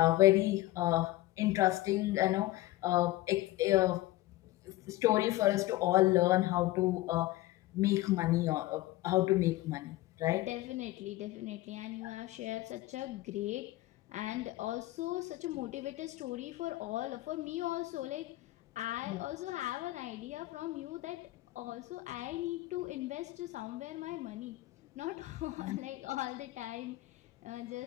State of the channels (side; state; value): right; quieter; 17.3 dB